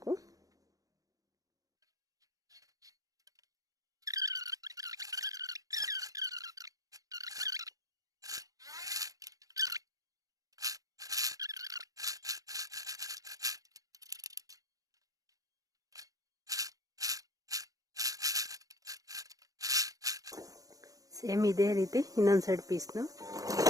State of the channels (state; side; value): late; left; 0.17 ms